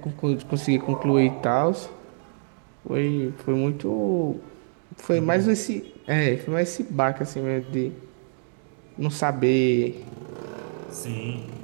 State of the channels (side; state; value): left; silent; digital silence